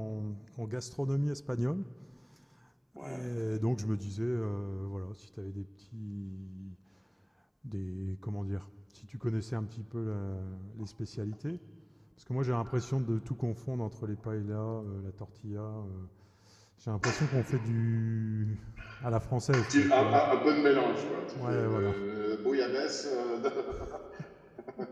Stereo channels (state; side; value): identical; both; correlation 1.00